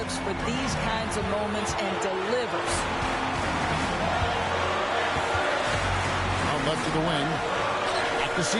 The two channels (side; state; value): both; identical; correlation 1.00